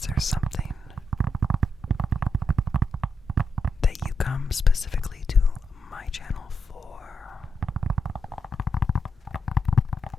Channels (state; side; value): normal; both; correlation 0.83